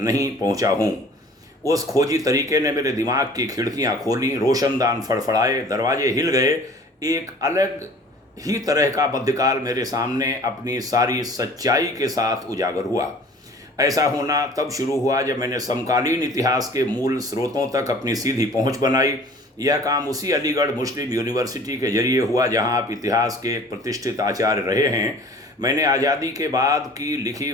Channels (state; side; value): normal; both; correlation 0.48